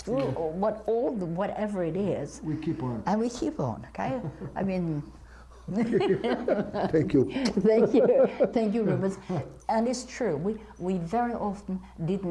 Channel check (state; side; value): identical; both; correlation 1.00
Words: whatever it is. We keep on. And we keep on, okay? I mean, Thank you. thank you, Rubens. And it's true, we very often